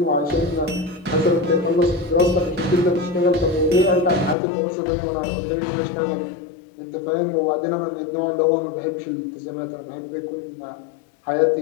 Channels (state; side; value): drops out; right; at 4.4 s